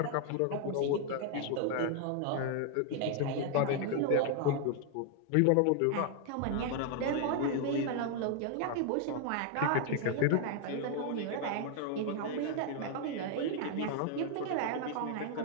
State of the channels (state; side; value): different; both; correlation 0.00